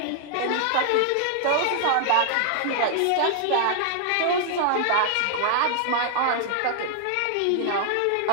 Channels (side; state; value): both; different; correlation 0.00